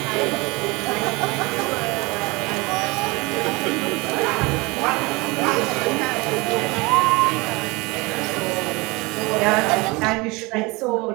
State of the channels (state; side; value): quieter; left; 24.7 dB